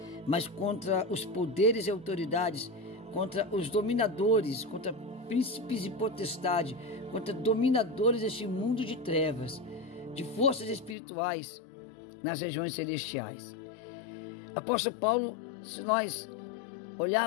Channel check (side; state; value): right; drops out; at 11.0 s